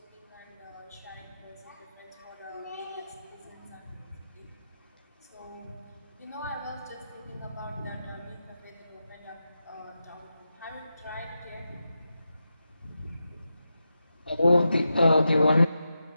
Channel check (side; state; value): both; inverted; correlation -0.90